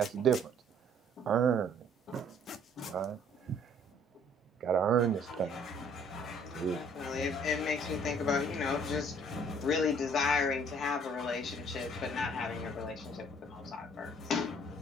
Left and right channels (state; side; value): normal; both; correlation 0.59